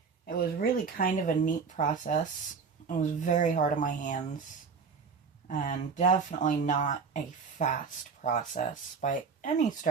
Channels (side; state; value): left; quieter; 5.5 dB